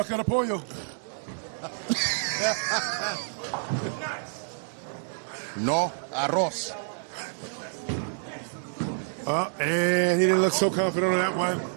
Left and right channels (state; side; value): silent; left; digital silence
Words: of pollo. No arroz. And he didn't look so confident on that one.